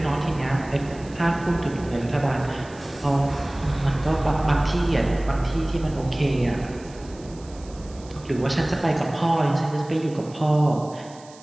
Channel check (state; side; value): noise; right; hiss, 23 dB below the sound